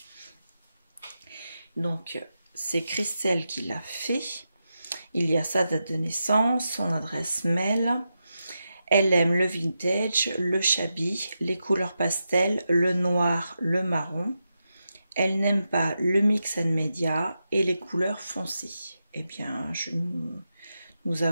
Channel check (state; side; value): inverted; both; correlation -0.88